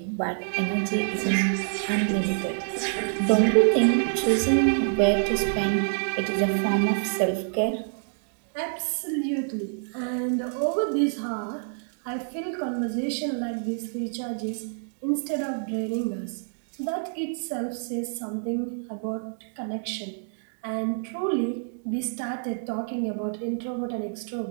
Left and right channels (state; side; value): silent; left; digital silence